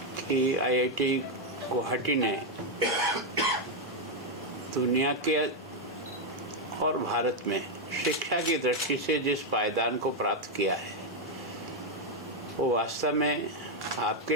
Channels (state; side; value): normal; both; correlation 0.02